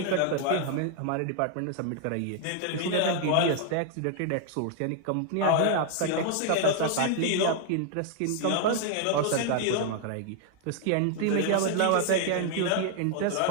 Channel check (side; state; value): both; different; correlation 0.00